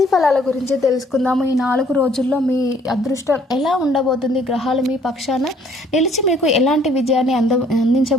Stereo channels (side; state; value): both; normal; correlation 0.61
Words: ఫలాల గురించి తెలుసుకుందాము. ఈ 4 రోజుల్లో మీ అదృష్టం ఎలా ఉండబోతుంది, గ్రహాలు మీ పక్షాన నిలిచి మీకు ఎలాంటి విజయాన్ని